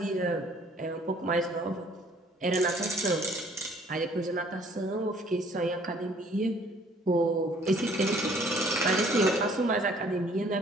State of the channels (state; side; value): normal; both; correlation 0.58